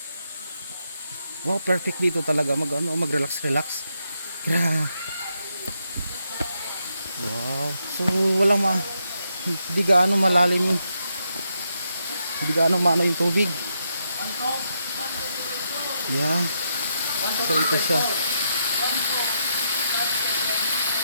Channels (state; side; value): inverted; both; correlation -0.81